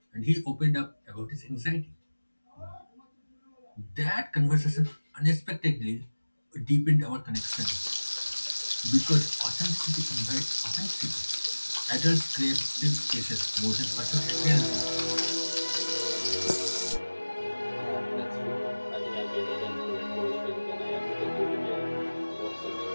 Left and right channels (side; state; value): both; inverted; correlation -1.00